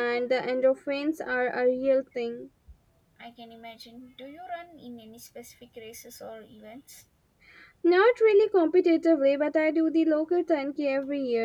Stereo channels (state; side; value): identical; both; correlation 1.00